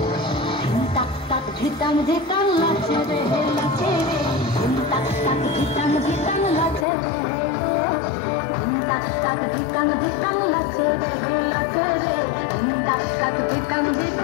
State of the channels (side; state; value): right; drops out; at 6.9 s